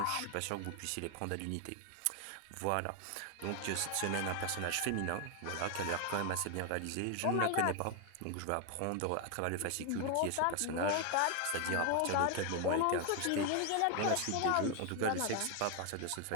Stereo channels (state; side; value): different; both; correlation 0.01